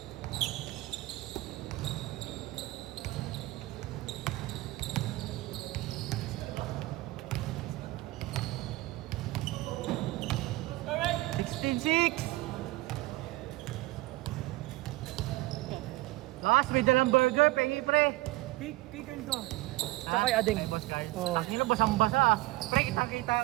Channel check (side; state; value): left; quieter; 19.5 dB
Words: Six. Boss, may dalang burger, pengi pre. Kikan ko. Ha? Tsaka kay Ading. Ay, boss Carl. Oo. Ang ino, basang-basa ah. Pre, kitang-kita